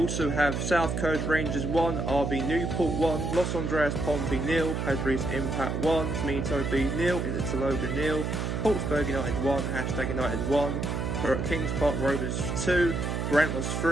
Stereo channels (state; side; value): noise; right; hum, 1 dB below the sound